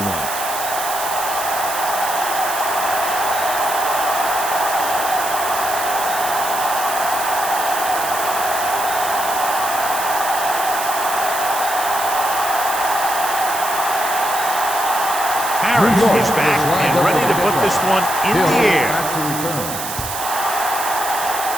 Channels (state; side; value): noise; right; hiss, 6 dB below the sound